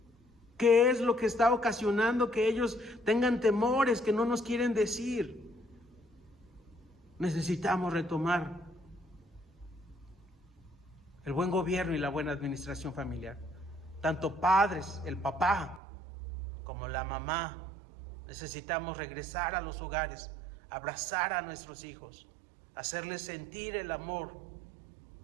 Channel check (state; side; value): drops out; left; at 15.8 s